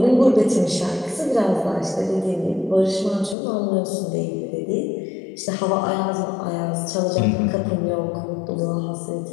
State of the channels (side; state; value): right; drops out; at 3.4 s